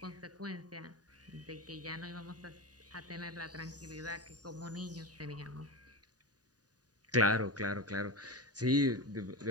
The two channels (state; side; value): late; left; 0.68 ms